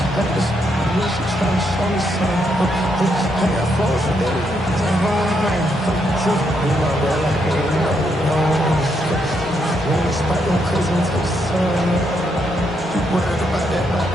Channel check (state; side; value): normal; both; correlation 0.78